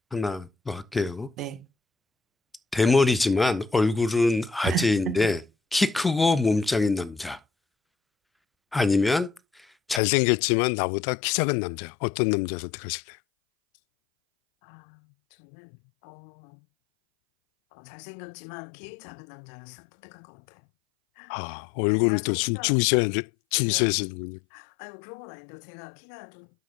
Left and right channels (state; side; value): drops out; right; at 10.0 s